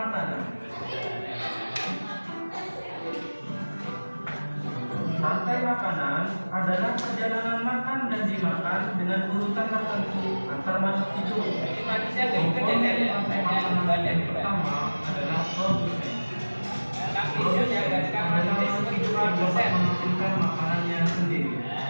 Rantai makanan adalah perjalanan makan dan dimakan dengan urutan tertentu antar makhluk hidup. Jadi manusia Komponen rantai makanan yang pertama adalah produsen. Produsen adalah makhluk hidup yang dapat menghasilkan makanannya sendiri.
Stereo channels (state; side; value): inverted; both; correlation -1.00